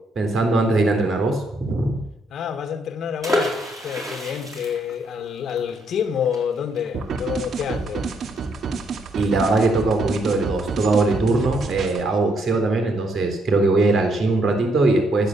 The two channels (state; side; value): normal; both; correlation 0.73